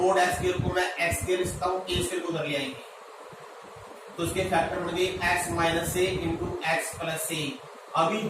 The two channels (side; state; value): both; identical; correlation 1.00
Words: x स्क्वायर को मैं x स्क्वायर लिखता हूं, a स्क्वायर को उधर ले आएंगे तो इसके फैक्टर बन गए x minus a into x plus a। अभी